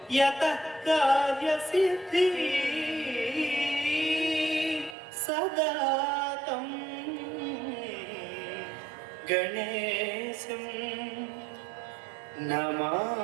यतः कार्यसिद्धिः सदा तं गणेशं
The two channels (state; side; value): drops out; left; at 5.0 s